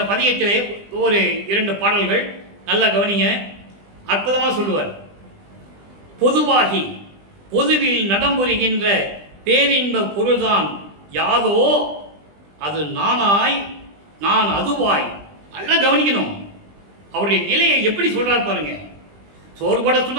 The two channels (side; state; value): left; late; 20 ms